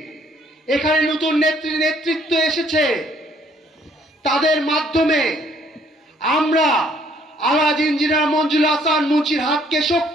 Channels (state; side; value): normal; both; correlation 0.64